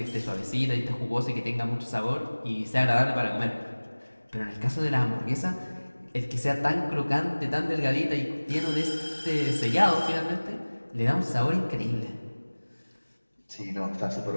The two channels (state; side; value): inverted; both; correlation -1.00